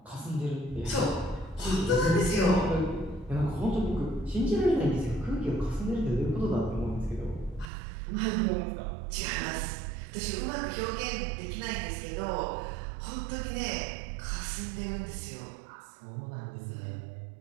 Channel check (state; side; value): drops out; left; at 7.7 s